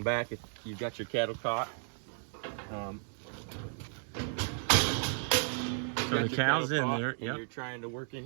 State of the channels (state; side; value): silent; left; 55 dB below the other